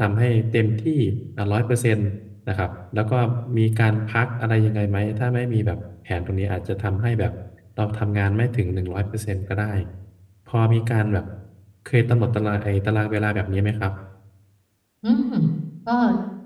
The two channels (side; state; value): both; identical; correlation 1.00